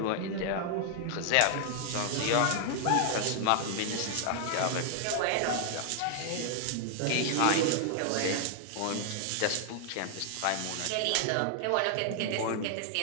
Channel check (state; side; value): different; both; correlation 0.00